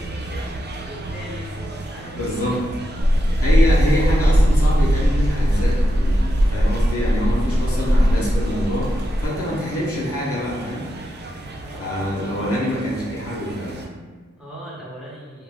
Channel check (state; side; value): normal; both; correlation 0.86